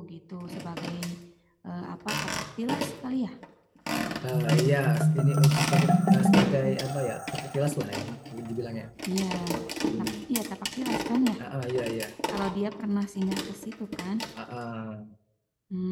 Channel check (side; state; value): both; identical; correlation 1.00